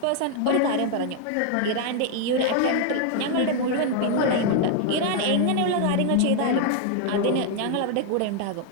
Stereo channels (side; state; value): both; different; correlation 0.00